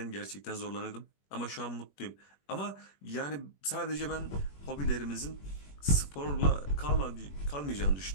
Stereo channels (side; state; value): right; late; 21 ms